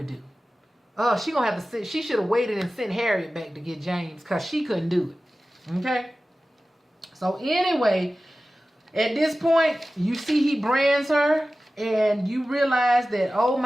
do. She gonna have to she should have waited and sent Harriet back to get James because she couldn't do it. Okay? So anyway, at this point, you see he brands her and you realize that, oh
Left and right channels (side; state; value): both; normal; correlation 0.96